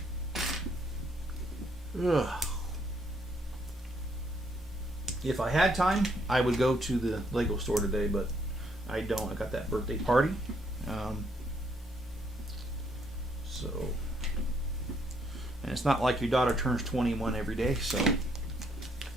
Ugh. If I had time, I would go to the Lego store today, but I don't. I got that birthday party. And it's not like your daughter turns 21 every day, so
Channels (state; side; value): normal; both; correlation 0.70